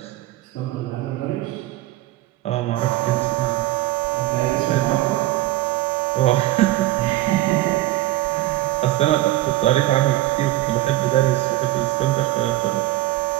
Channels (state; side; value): quieter; left; 16.5 dB